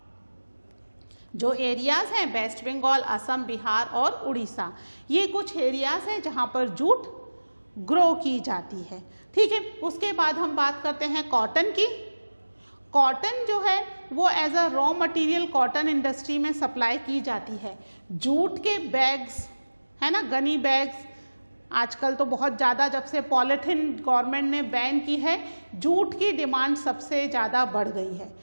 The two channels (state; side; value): inverted; both; correlation -1.00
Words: जो एरियाज़ हैं वेस्ट बंगाल, असम, बिहार और उड़ीसा, ये कुछ एरियाज़ हैं जहाँ पर जूट ग्रो की जाती है। ठीक है, उसके बाद हम बात करते हैं कॉटन की। कॉटन जो है वो as a raw material cotton industry में सप्लाई की जाती है। जूट के बैग्स, है ना, गनी बैग्स, आजकल तो बहुत ज़्यादा, जब से पॉलीथीन गवर्नमेंट ने बैन की है, जूट की डिमांड सबसे ज़्यादा बढ़ गई है